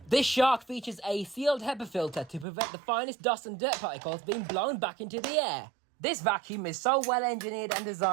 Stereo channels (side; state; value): left; drops out; at 2.5 s